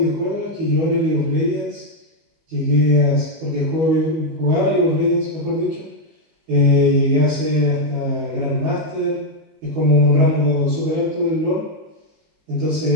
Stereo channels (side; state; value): left; late; 19 ms